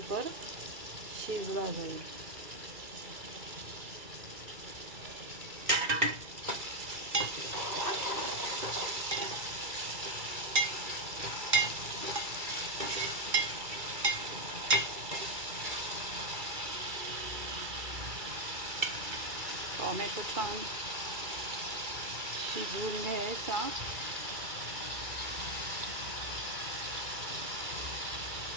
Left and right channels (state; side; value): late; left; 2.3 ms